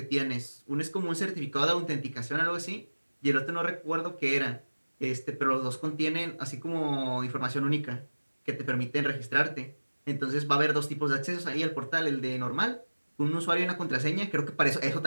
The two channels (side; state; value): both; inverted; correlation -1.00